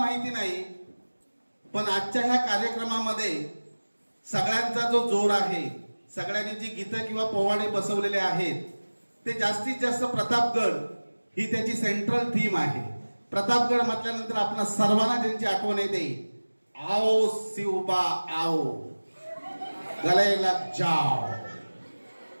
नाही, पण आजच्या ह्या कार्यक्रमामध्ये सगळ्यांचा जो जोर आहे, सगळ्यांनी जी गीतं किंवा पोवाडे बसवलेले आहेत ते जास्तीत जास्त प्रतापगड ही त्याची सेंट्रल थीम आहे। प्रतापगड म्हटल्यानंतर आपल्या सर्वांना ज्यांची आठवण येते, आओ शिवबा आओ, गले लग जाओ।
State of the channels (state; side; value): inverted; both; correlation -1.00